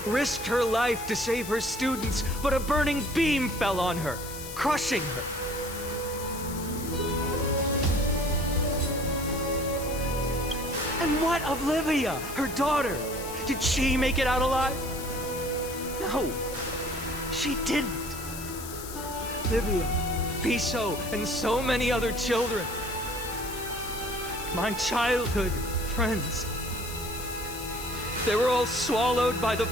risked her life to save her students, but a burning beam fell on her, crushing her. And what of Livia, her daughter? Did she make it out alive? No, she didn't. Livia, Piso, and so many other children. My childhood friends. They were all swallowed by the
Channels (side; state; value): left; noise; hiss, 11 dB below the sound